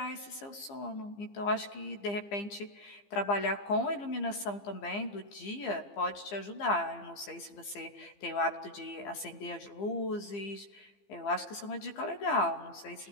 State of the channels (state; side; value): late; right; 15 ms